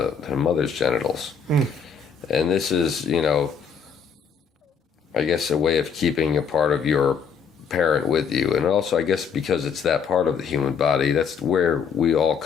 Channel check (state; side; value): quieter; right; 6.4 dB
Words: mother's genitals. And this is, I guess, a way of keeping a part of your parent with you, and also I guess because it's that part of the human body, that's where we all